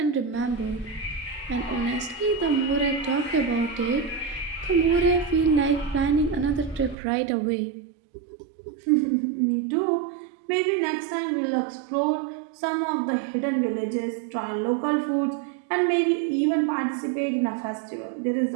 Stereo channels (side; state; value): left; drops out; at 7.0 s